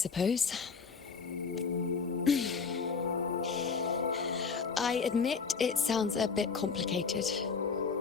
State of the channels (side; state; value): right; quieter; 5.3 dB